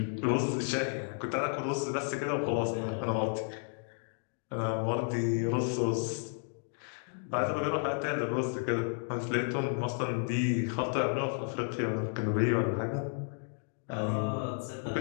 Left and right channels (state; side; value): silent; right; 56 dB below the other